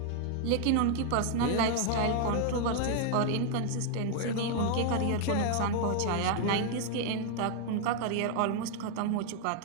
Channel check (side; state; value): both; different; correlation 0.00